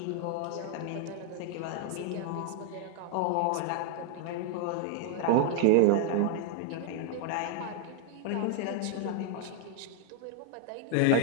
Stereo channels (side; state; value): both; different; correlation 0.00